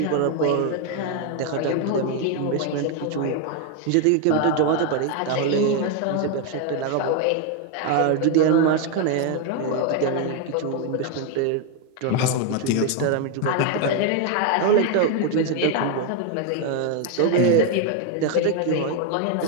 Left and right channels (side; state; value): both; different; correlation 0.01